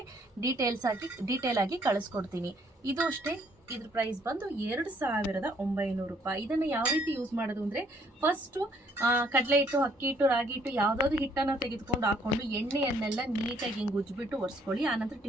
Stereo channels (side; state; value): both; normal; correlation 0.65